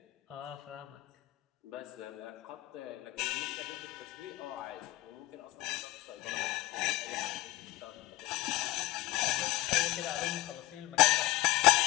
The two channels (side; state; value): right; quieter; 17.9 dB